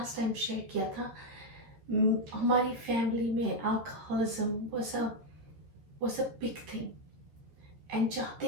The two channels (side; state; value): left; late; 13 ms